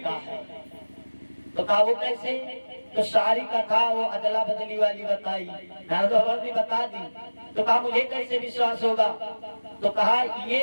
है। तो कहा, वो कैसे? तो सारी कथा वो अदला बदली वाली बताई, नारद बाबा ने बता दी। तो कहा, मुझे कैसे विश्वास होगा? तो कहा,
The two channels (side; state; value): both; inverted; correlation -1.00